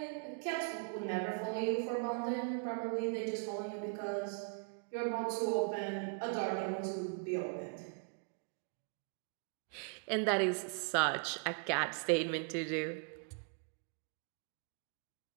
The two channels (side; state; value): left; quieter; 38.9 dB